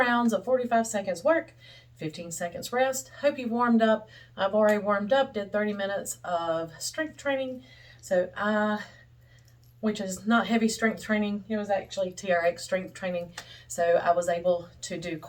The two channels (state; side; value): identical; both; correlation 1.00